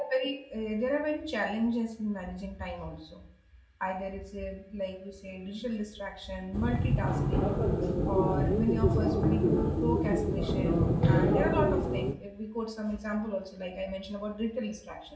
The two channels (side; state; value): both; identical; correlation 1.00